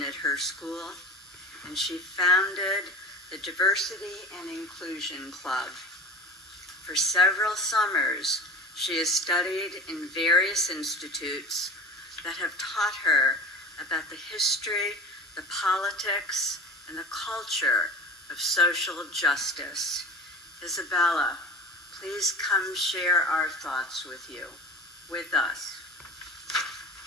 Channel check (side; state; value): both; normal; correlation 0.36